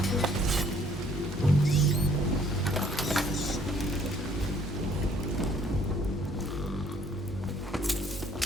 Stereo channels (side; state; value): both; normal; correlation 0.62